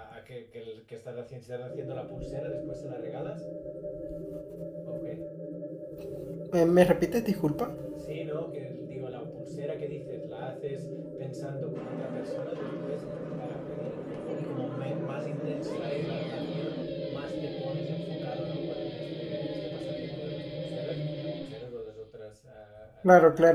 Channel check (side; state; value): both; identical; correlation 1.00